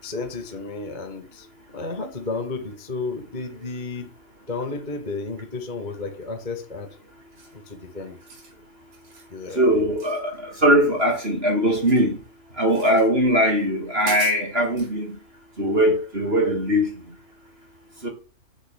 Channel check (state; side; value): late; left; 2.9 ms